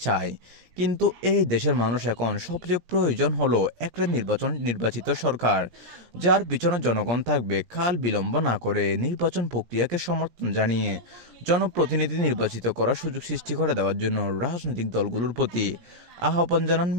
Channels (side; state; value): left; late; 17 ms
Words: চায়। কিন্তু এই দেশের মানুষ এখন সবচেয়ে প্রয়োজন হলো একটা নির্বাচিত সরকার, যার পিছনে জনগণ থাকবে। কাল বিলম্ব না করে নির্বাচন প্রক্রিয়াকে সমর্থন জানিয়ে জনপ্রতিনিধি নির্বাচিত করার সুযোগ সৃষ্টি করে দেওয়ার জন্য রাজনৈতিক দলগুলোর প্রতি আহ্বান জানান